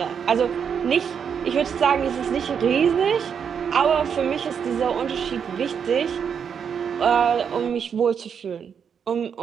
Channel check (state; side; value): quieter; left; 7.3 dB